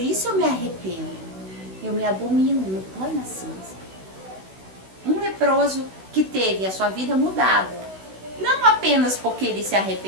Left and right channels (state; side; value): late; left; 16 ms